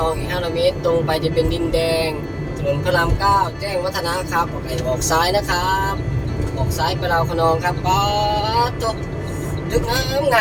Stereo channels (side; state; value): both; identical; correlation 1.00